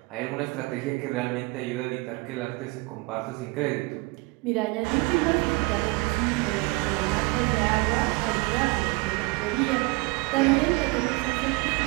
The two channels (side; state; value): left; quieter; 25.7 dB